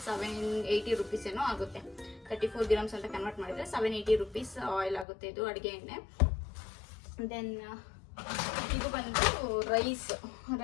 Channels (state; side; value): drops out; right; at 5.1 s